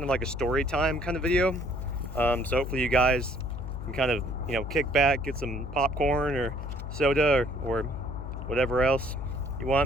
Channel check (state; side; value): noise; left; hum, 7 dB below the sound